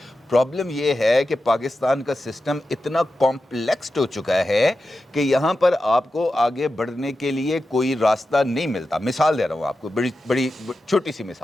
پرابلم یہ ہے کہ پاکستان کا سسٹم اتنا کمپلیکسڈ ہو چکا ہے کہ یہاں پر آپ کو آگے بڑھنے کے لیے کوئی راستہ نہیں ملتا. مثال دے رہا ہوں آپ کو, بڑی چھوٹی سی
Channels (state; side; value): normal; both; correlation 0.91